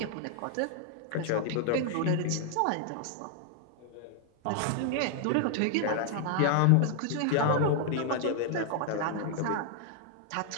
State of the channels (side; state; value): both; different; correlation 0.00